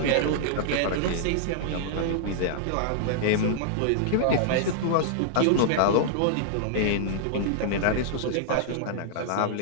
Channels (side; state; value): both; different; correlation -0.01